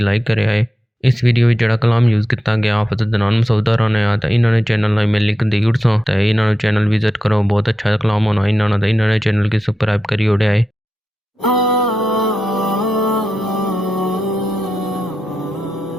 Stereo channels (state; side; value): normal; both; correlation 0.89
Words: کرے آئے۔ اس ویڈیو وچ جڑا کلام یوز کیتا گیا حافظ عدنان مسعودہ رانے آ تے انہاں نے چینل نال میں لنک دی اڑساں تے انہاں نے چینل وزٹ کرو، بہت اچھا کلام ہونا انہاں نے چینل کی سبسکرائب کری اڑے آئے۔